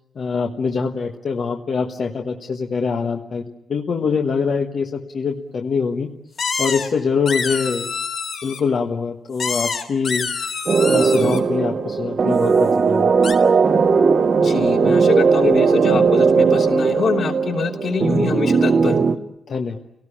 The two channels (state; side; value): normal; both; correlation 0.83